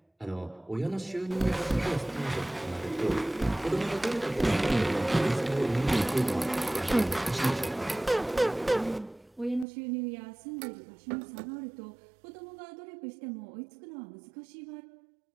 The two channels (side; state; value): left; drops out; at 9.7 s